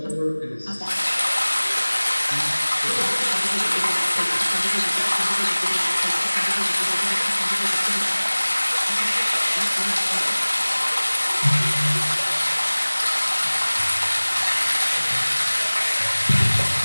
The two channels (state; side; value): inverted; both; correlation -1.00